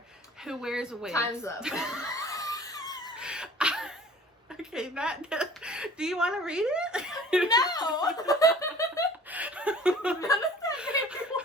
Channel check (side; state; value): both; normal; correlation 0.47